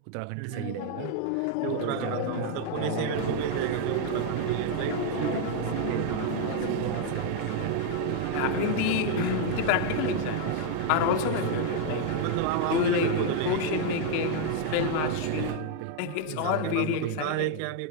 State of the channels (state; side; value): different; both; correlation 0.00